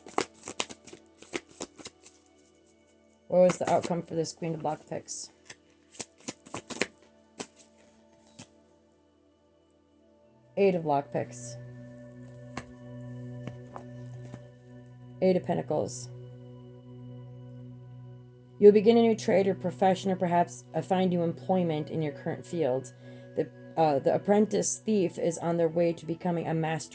What was the outcome for this Queen of Lockpicks? Eight of Lockpicks. Eight of Pentacles. You'll begin a new trade or profession, or perhaps find new employment in your current field. The apprentice thief is on their way to becoming a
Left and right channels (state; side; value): identical; both; correlation 1.00